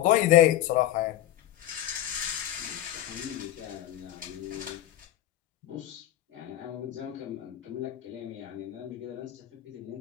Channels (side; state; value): right; quieter; 13.0 dB